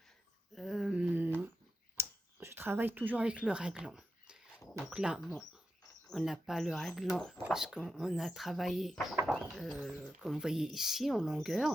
le raglan. Donc là, bon, on n'a pas le raglan parce qu'on a travaillé, comme vous voyez ici, en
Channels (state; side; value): normal; both; correlation 0.89